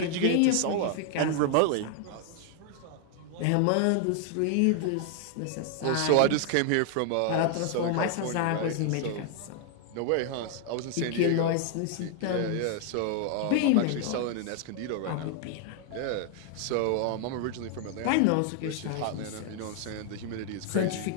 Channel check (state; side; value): different; both; correlation 0.00